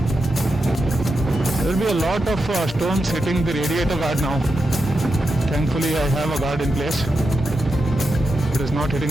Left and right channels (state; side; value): normal; both; correlation 0.87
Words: There will be a lot of stones hitting the radiator guard now. Thankfully I have a guard in place. It is not